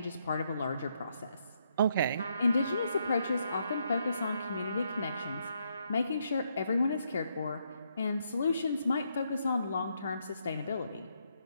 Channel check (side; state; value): both; inverted; correlation -0.76